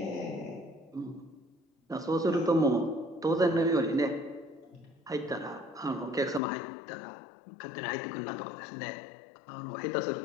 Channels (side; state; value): right; drops out; at 6.4 s